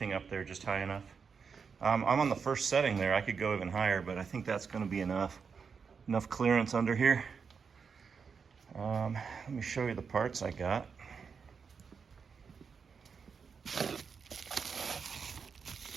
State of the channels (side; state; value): left; quieter; 5.9 dB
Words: up there just high enough. I'm on the first setting there. I could go even higher, but I think that's gonna be enough. Enough clearance under here. Let me show you the parts I got.